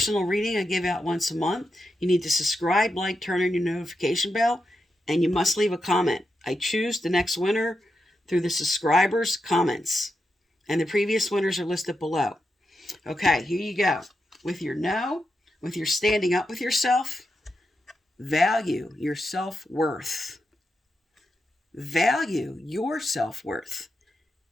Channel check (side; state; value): both; normal; correlation 0.86